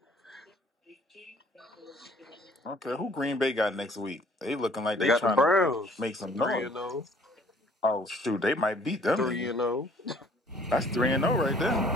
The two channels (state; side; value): normal; both; correlation 0.56